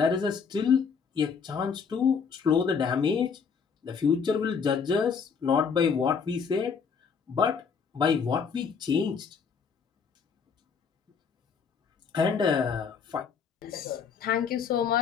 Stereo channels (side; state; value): right; quieter; 6.1 dB